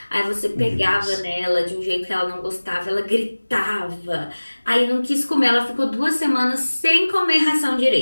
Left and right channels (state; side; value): inverted; both; correlation -1.00